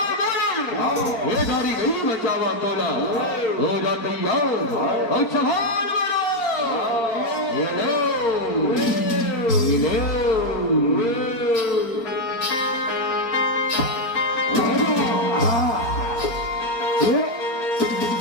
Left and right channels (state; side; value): late; right; 4.4 ms